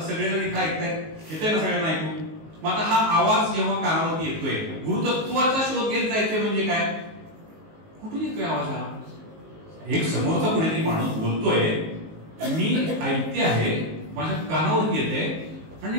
सगळेजण इथं ऐकतायत, येतंय ना सगळ्यांना ऐकू. मग आता हा आवाज जेव्हा कानावरती येतोय, गुरुतत्वाचा शोध घेत जायचंय म्हणजे काय, कुठून येतोय आवाज हा. एक समोरचा कोणीतरी माणूस बोलतोय, मी ऐकते आहे, माझ्या कानावरती येते आणि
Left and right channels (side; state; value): left; late; 19 ms